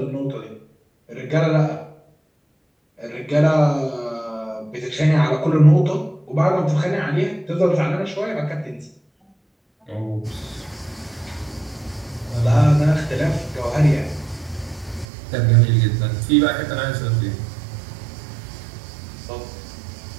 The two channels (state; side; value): drops out; left; at 15.1 s